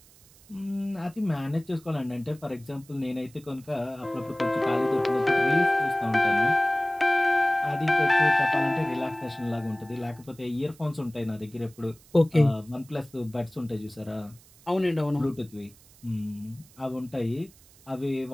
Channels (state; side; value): noise; right; hiss, 26 dB below the sound